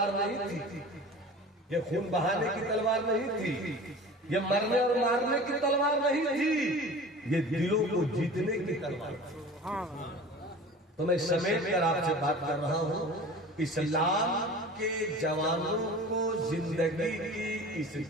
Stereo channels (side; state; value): both; normal; correlation 0.39